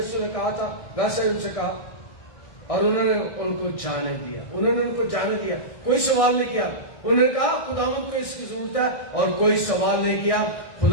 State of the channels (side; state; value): right; late; 1.6 ms